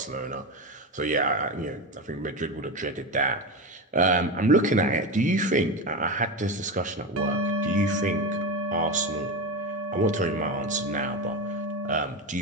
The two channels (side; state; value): both; normal; correlation 0.18